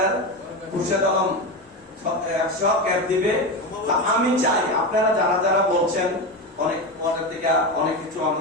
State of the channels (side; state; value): both; normal; correlation 0.19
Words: খুরশেদ আলম 100 ক্যাপ দিবে। আমি চাই আপনারা যারা যারা বলছেন অনেক পরের দিকে অনেক কিছু